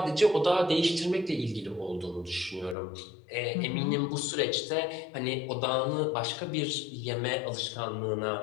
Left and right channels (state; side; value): drops out; right; at 2.8 s